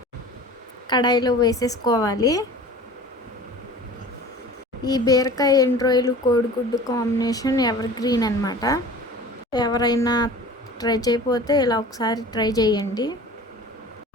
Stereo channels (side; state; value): both; normal; correlation 0.41